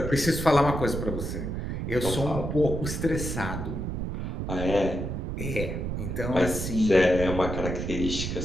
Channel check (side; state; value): right; noise; rumble, 4 dB below the sound